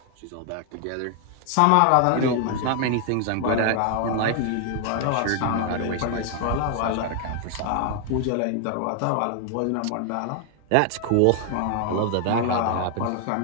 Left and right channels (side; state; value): both; different; correlation 0.00